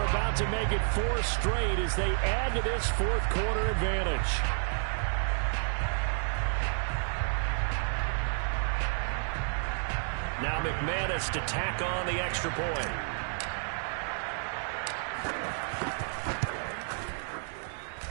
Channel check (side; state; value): left; silent; 57 dB below the other